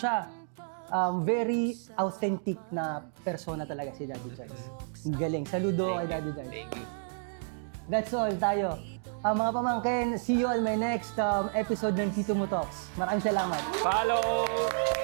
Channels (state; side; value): silent; left; digital silence